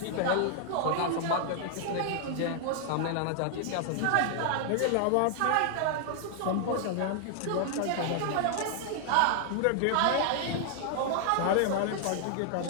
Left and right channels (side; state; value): both; different; correlation 0.00